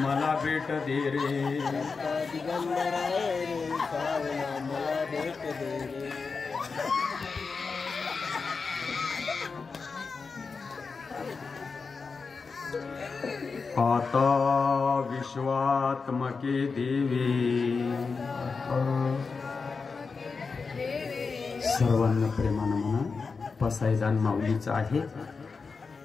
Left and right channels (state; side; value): quieter; right; 4.8 dB